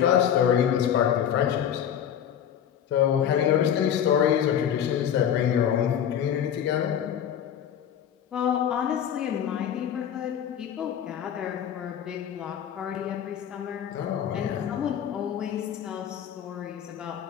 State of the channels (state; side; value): quieter; right; 9.3 dB